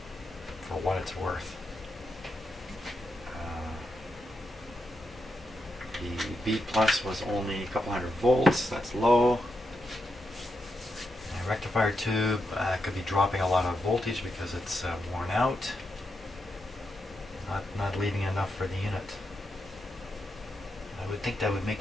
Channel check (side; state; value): both; normal; correlation 0.84